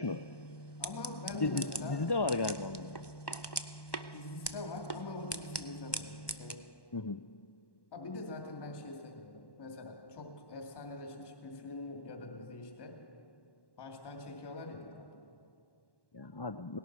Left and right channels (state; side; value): late; right; 1.1 ms